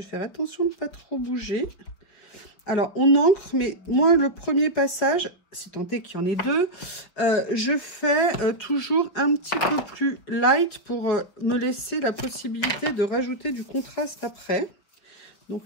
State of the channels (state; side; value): late; right; 5.6 ms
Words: faire attention de ne pas trop bouger. Alors, on encre, mais moi, le premier passage, si tant est qu'il y en ait 2, je fais toujours un petit peu plus light pour me laisser la possibilité de rajouter du contraste après.